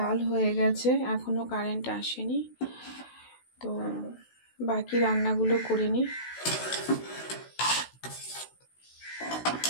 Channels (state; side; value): late; right; 16 ms